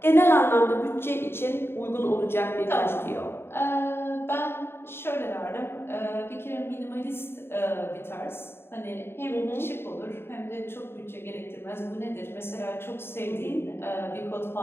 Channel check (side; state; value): right; late; 0.11 ms